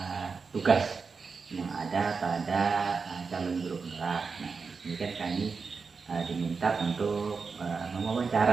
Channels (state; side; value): quieter; left; 5.0 dB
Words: tugas yang ada pada calon guru penggerak. Nah, ini kan kami diminta untuk